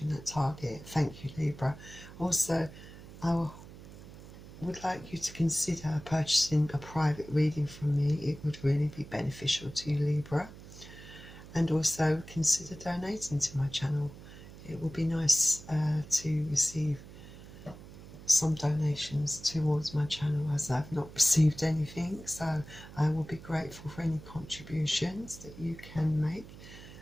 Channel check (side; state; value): right; noise; hum, 16 dB below the sound